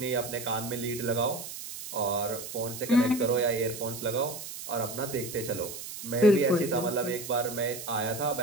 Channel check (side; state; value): right; noise; hiss, 10 dB below the sound